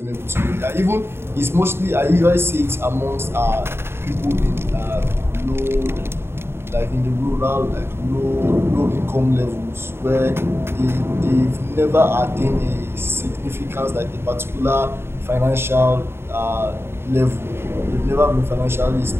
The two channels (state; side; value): late; left; 0.12 ms